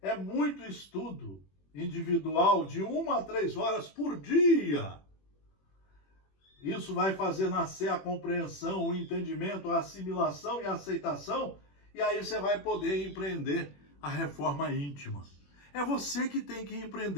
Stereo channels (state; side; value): late; right; 21 ms